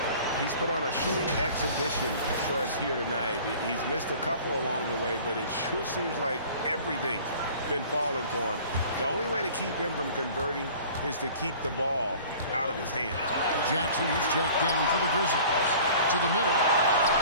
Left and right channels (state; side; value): inverted; both; correlation -0.46